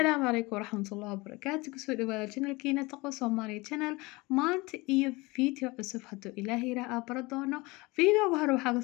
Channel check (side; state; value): right; quieter; 23.5 dB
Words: عليكم ورحمة الله وبركاته كسو دواada channelkiina taqo Soomaali channel maanta iyo video cusub haduu Ilaahay raa baradoono videoga hore